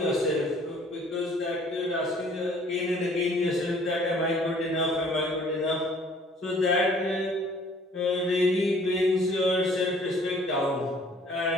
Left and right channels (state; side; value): normal; both; correlation 0.56